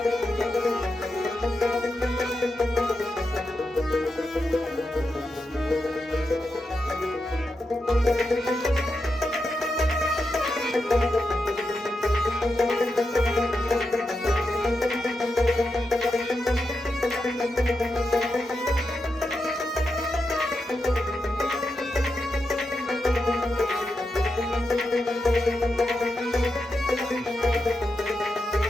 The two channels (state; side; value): normal; both; correlation 0.87